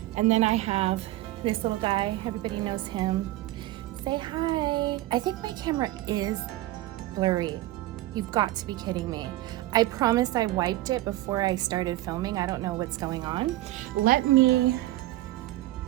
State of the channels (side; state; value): left; quieter; 16.6 dB